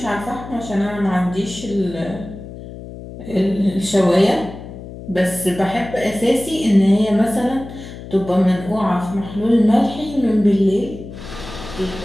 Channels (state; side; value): noise; left; hum, 13 dB below the sound